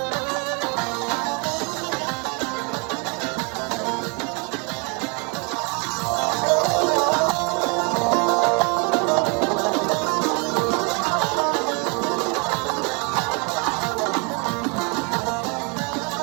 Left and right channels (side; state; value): left; quieter; 33.1 dB